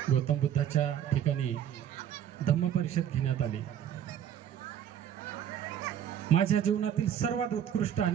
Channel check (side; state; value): left; quieter; 9.9 dB